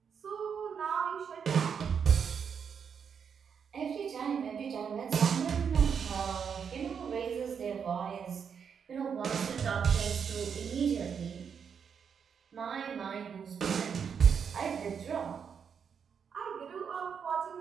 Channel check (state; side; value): quieter; left; 6.9 dB